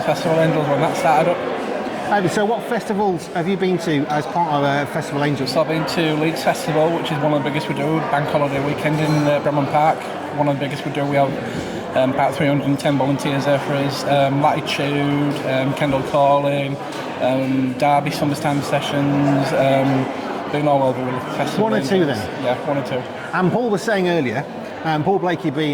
Angels when that started up. So what festivals have you been to as part of Festival Angels? So I've been to Leeds Festival, which is one of the biggest we do, Bank Holiday Weekend in Bramham Park, one of the biggest we do. We have about 310 volunteers there for us. Latitude, Kendall Calling, Derby Summertime Sessions, been all over with the festival. One or two then? Yeah, one or two. And Paul was saying earlier, Paul Blakey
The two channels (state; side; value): identical; both; correlation 1.00